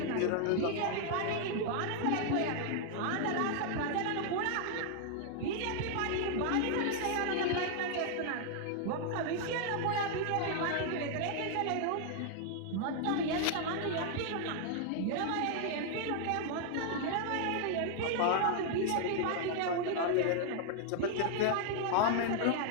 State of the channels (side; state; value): both; different; correlation 0.00